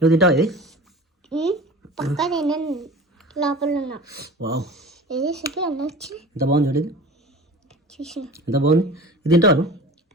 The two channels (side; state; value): both; normal; correlation 0.37